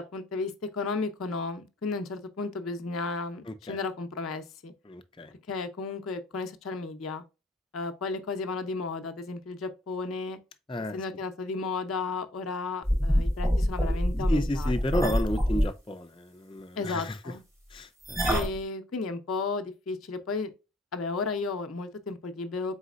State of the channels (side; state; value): both; normal; correlation 0.65